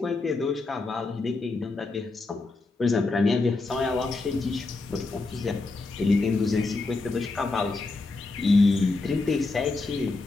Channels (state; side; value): quieter; right; 3.5 dB